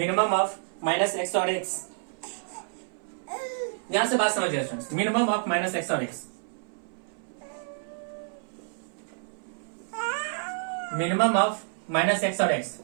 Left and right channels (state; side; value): silent; left; 59 dB below the other